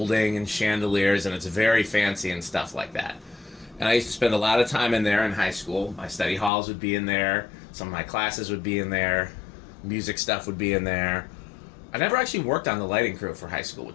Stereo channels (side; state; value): right; drops out; at 6.5 s